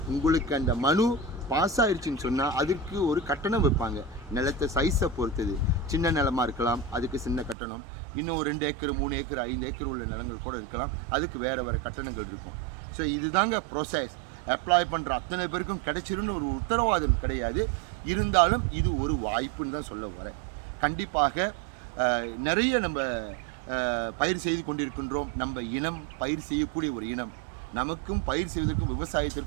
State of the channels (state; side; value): drops out; left; at 7.6 s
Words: உங்களுக்கு அந்த மனு பாஸ் ஆயிடுச்சுன்னு சொன்னால் அதுக்கு ஒரு கட்டணம் வைப்பாங்க. நிலத்தை சைஸை பொறுத்தது. சின்ன நிலமாக இருக்கலாம், அதுக்கு சின்ன கட்டணம். இன்னும் ஒரு 2 ஏக்கர் 3 ஏக்கர் 5 ஏக்கர் உள்ள நிலங்கள் கூட இருக்கலாம், அதுக்கு வேறு கட்டணங்கள் இருக்கும். ஸோ இதுதாங்க ப்ரோசஸ். அப்ளை பண்ணுற அத்தனை பேருக்கும் கிடைச்சிருன்னு ஒரு உத்தரவாதம் கிடையாது. இருந்தாலும் இது ஒரு வாய்ப்புன்னு தான் சொல்ல வரேன். கண்டிப்பாக நிறைய நம்ம பயிர் செய்து கொண்டிருக்கின்றோம். நம்ம இனம் பயிர் செய்யக்கூடிய ஒரு இனம். நமக்கும் பயிர் செய்வதற்கும்